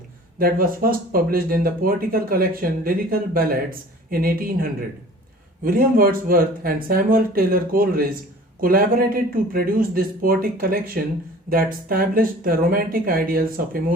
that was first published in the poetical collection Lyrical Ballads in 1800. William Wordsworth and Samuel Taylor Coleridge collaborated to produce this poetic collection that established the romantic ideals of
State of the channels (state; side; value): normal; both; correlation 0.46